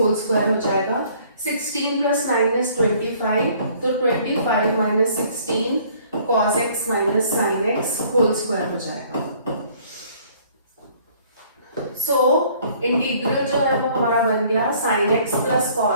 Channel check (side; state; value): both; inverted; correlation -0.58